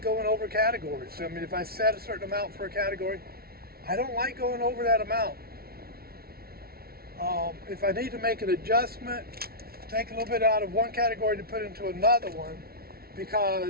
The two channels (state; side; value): late; left; 0.44 ms